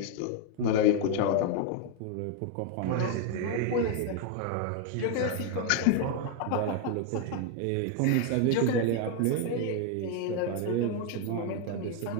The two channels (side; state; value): both; different; correlation 0.01